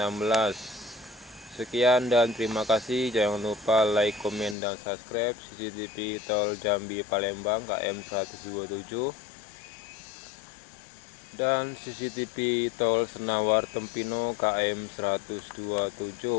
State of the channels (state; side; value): drops out; right; at 4.5 s